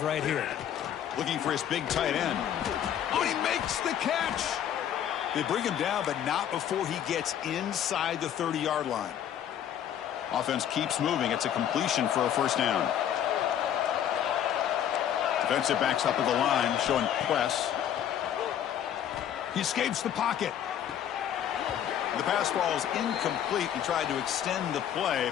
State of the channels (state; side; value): quieter; right; 10.0 dB